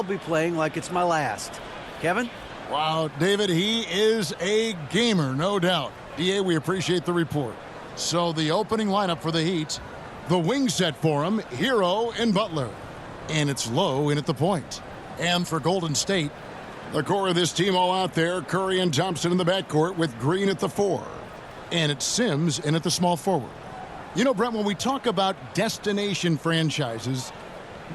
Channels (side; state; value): both; identical; correlation 1.00